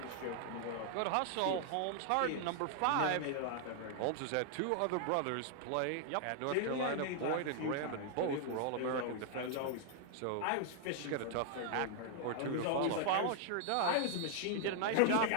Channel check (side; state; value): both; different; correlation 0.00